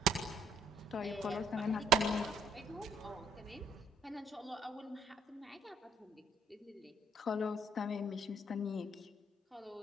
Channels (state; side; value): normal; both; correlation 0.66